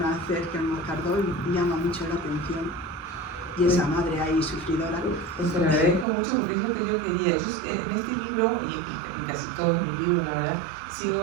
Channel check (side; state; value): left; drops out; at 6.1 s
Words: que el moscardón llama mucho la atención. Y esa madre ahí sufridora. Pues te lo agradezco mucho porque es lo que yo quería. Yo en este libro, y en casi todos mis libros, la verdad,